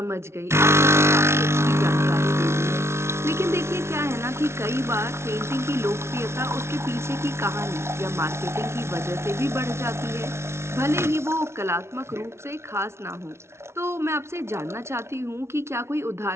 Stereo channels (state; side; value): late; left; 0.13 ms